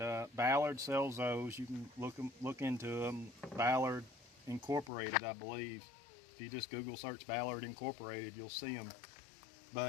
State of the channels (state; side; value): drops out; right; at 4.9 s